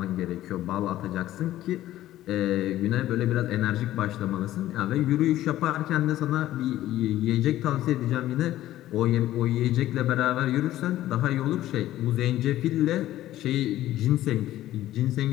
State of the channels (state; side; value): quieter; right; 14.1 dB